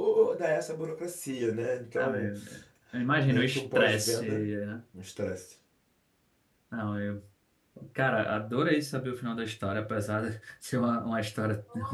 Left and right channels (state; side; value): identical; both; correlation 1.00